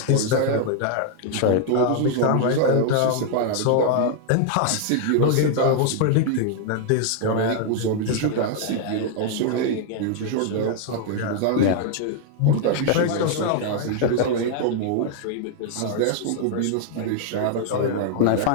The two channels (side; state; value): both; different; correlation 0.00